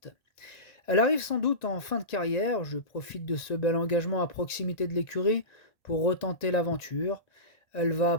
Elle arrive sans doute en fin de carrière. Je profite de ce bel engagement à proximité de l'écurie pour retenter l'aventure. Elle va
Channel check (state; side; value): late; right; 1.9 ms